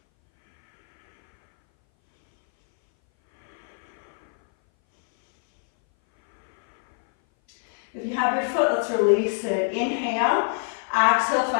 If you have your foot, let's release it. Inhale, exhale,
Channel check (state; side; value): silent; right; 60 dB below the other